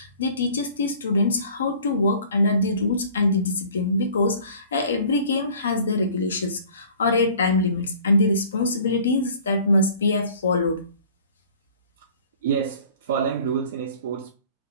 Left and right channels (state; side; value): inverted; both; correlation -0.49